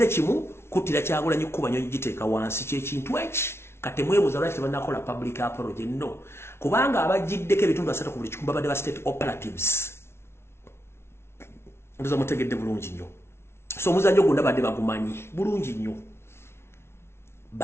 kimu kutira Kyagulanyi kuba nyonyi giteeka wansi ky'ekintu eki kati mwebuuza lwaki tebannakola public apology no kubanga abagiddeko ebitundu 3 ku buli kikumi babadde ba state operatives. Ndoza mutegedde bulungi nnyo. So omuzannyo gwonna badde bagumanyi bulungi nnyo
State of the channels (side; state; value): right; late; 0.12 ms